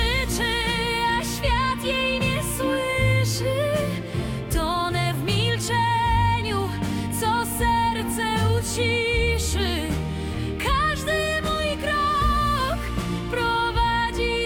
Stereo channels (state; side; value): identical; both; correlation 1.00